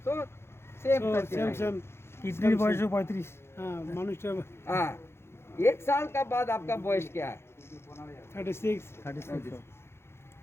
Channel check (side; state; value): right; late; 0.12 ms